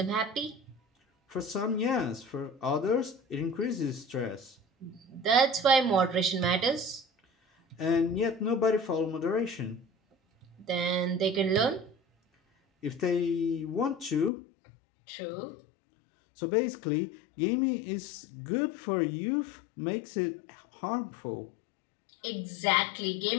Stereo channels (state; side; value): drops out; right; at 14.3 s